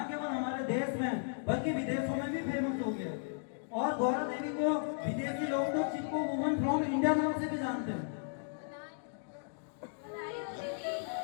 केवल हमारे देश में बल्कि विदेशों में भी फेमस हो गया है। और गौरा देवी को विदेशी लोग तो चिपको वुमन फ्रॉम इंडिया नाम से भी जानते हैं। बधाई हो दीदी।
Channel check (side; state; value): right; silent; digital silence